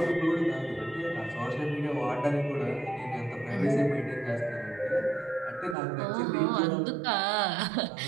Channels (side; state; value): left; drops out; at 5.8 s